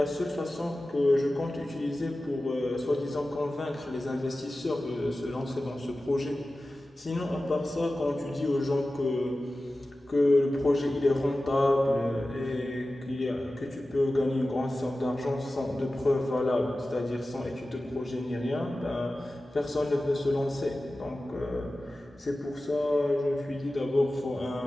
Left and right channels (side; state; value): both; normal; correlation 0.95